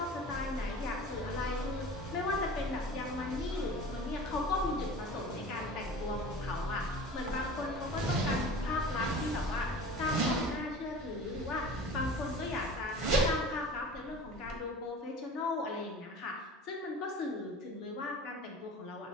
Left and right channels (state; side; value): normal; both; correlation 0.39